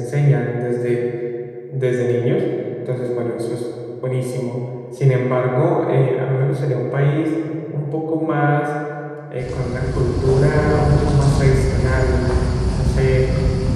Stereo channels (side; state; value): both; identical; correlation 1.00